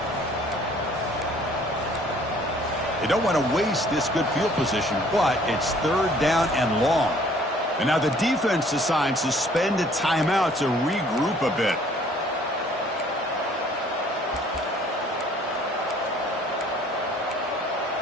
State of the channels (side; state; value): both; normal; correlation 0.57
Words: They don't want to waste this good field position, but it's 3rd down and long. And now the defense decides to spend a timeout to regroup a bit.